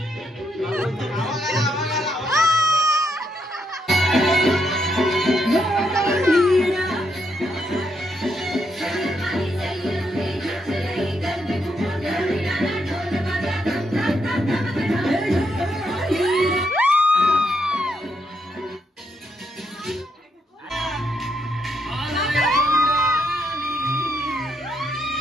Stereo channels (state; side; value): normal; both; correlation 0.78